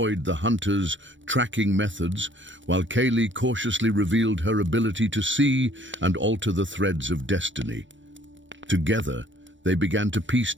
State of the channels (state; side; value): late; left; 0.55 ms